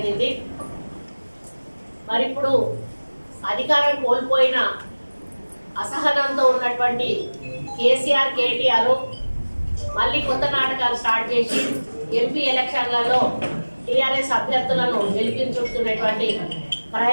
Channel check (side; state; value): both; inverted; correlation -1.00